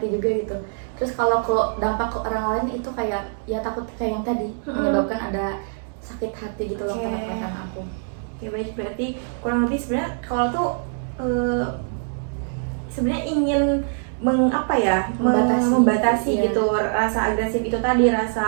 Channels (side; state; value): left; silent; digital silence